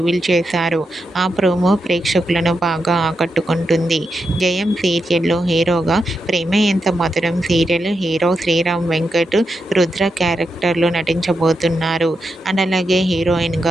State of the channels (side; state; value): both; normal; correlation 0.86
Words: చేశారు. ఆ ప్రోమో ప్రేక్షకులను బాగా ఆకట్టుకుంటుంది. జయం సీరియల్లో హీరోగా ప్రేమ ఎంత మధురం సీరియల్ హీరో శ్రీరామ్ వెంకట్ రుద్ర క్యారెక్టర్లో నటించబోతున్నారు. అండ్ అలాగే